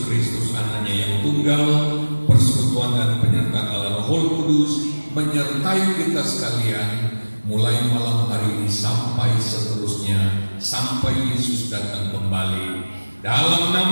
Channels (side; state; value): both; inverted; correlation -1.00